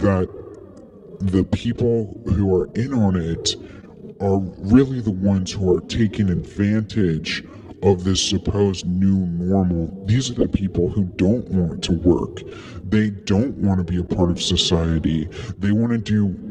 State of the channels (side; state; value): both; identical; correlation 1.00